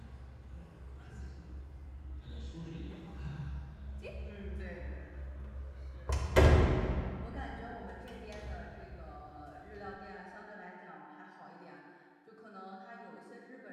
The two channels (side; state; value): both; identical; correlation 1.00